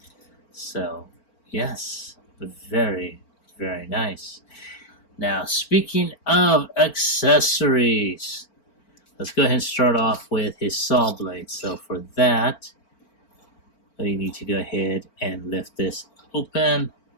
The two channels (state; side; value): late; right; 4.4 ms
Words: So, yes, very, very nice. Now, speaking of accessories, let's go ahead and start off with his saw blade. So for that, you need to go ahead and lift this open.